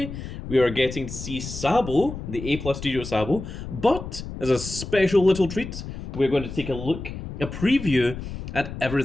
we are getting to see Sabo, the A Plus Studio Sabo, but as a special little treat, we're going to take a preview at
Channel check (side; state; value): left; noise; rumble, 9 dB below the sound